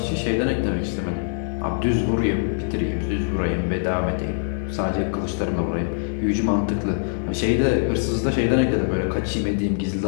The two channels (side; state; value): right; silent; digital silence